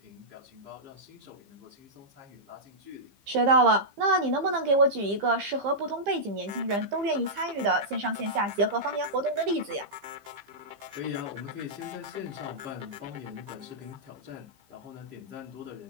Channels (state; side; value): late; left; 15 ms